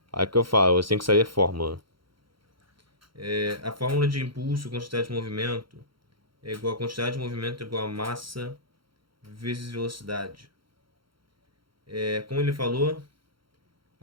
Aí que eu falo: você tem que saber a fórmula. A fórmula de impulso, quantidade de movimento, é igual a quantidade de movimento é igual a massa vezes velocidade. Como ele falou,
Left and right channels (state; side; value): late; left; 0.73 ms